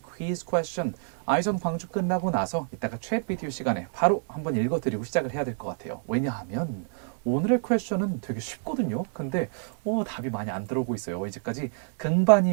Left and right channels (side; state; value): left; silent; 60 dB below the other